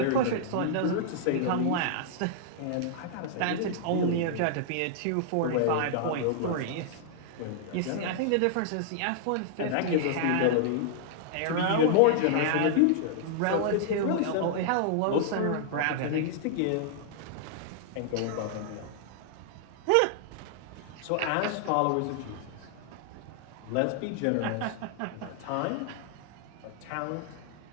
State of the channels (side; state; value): both; different; correlation -0.01